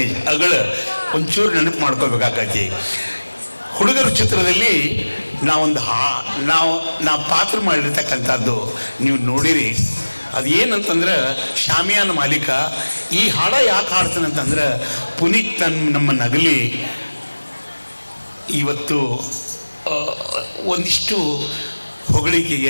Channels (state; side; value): inverted; both; correlation -1.00